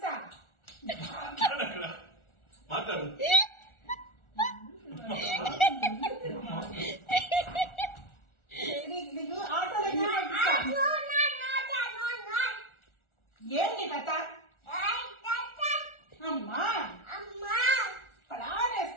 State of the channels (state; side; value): late; right; 1.4 ms